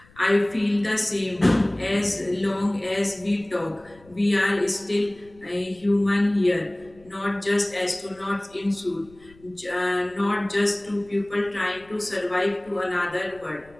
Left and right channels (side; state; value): left; noise; rumble, 26 dB below the sound